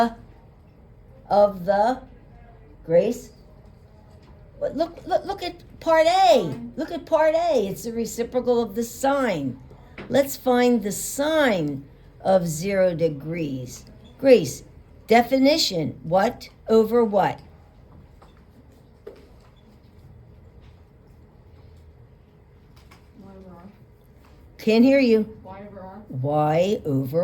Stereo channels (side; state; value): both; identical; correlation 1.00